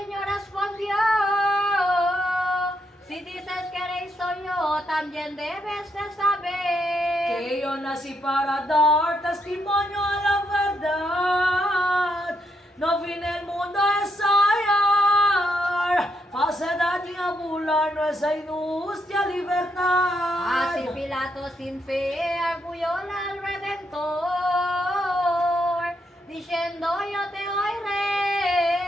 respondió, si dices que eres soy yo, también debes de saber. Que yo nací para dar testimonio a la verdad. No vine al mundo a ensayar falsedad ni a burlar nuestra injusta libertad. Así Pilato sin fe arguyó al Redentor, diciendo yo te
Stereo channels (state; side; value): normal; both; correlation 0.78